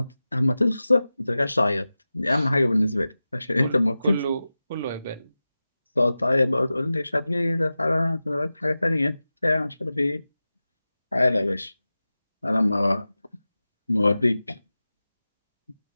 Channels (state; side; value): inverted; both; correlation -0.95